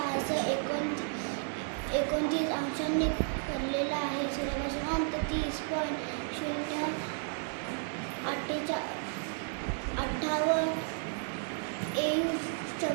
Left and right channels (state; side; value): silent; left; 56 dB below the other